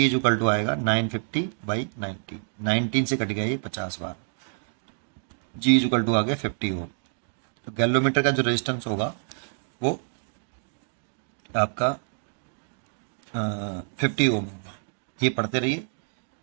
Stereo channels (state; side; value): silent; left; digital silence